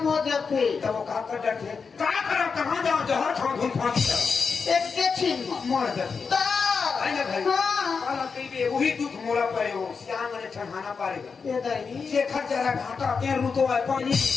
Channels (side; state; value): right; quieter; 5.3 dB